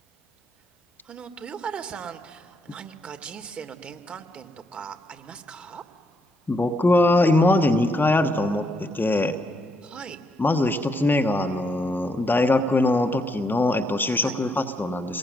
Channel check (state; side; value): normal; both; correlation 0.76